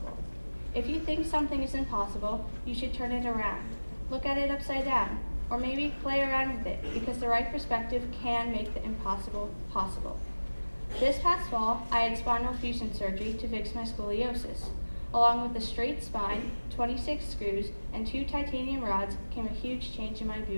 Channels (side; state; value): both; inverted; correlation -1.00